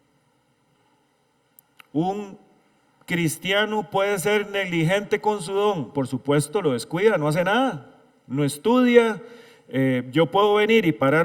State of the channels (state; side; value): identical; both; correlation 1.00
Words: Un cristiano puede ser negligente con su don, por supuesto lo descuida, no hace nada, no estudia. Yo puedo venir y